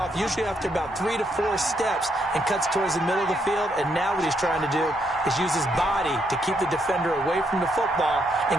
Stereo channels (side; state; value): both; normal; correlation 0.75